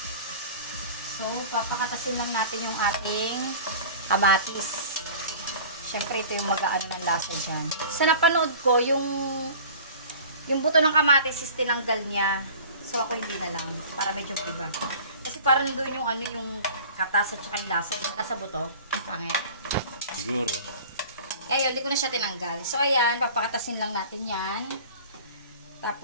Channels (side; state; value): both; inverted; correlation -0.42